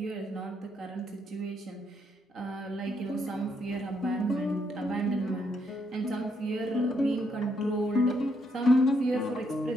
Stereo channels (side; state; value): both; normal; correlation 0.75